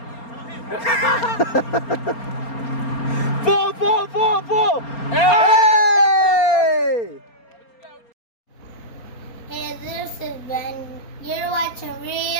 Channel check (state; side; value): late; right; 4.3 ms